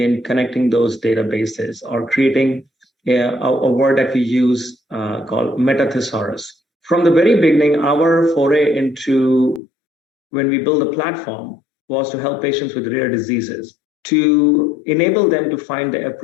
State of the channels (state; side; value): drops out; right; at 9.6 s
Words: connecting those databases or creating a word that we use called meta-thesaurus. From the very beginning, our foray into when we build a platform was to help patients with rare diseases, to enable them to find the